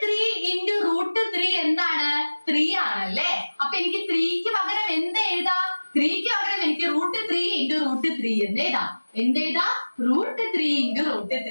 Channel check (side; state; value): both; inverted; correlation -1.00